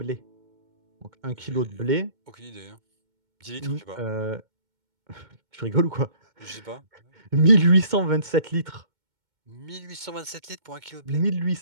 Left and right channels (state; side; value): late; left; 2.2 ms